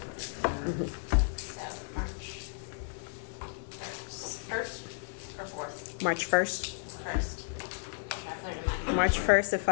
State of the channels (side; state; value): right; silent; digital silence